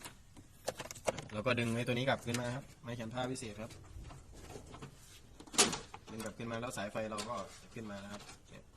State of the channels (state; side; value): identical; both; correlation 1.00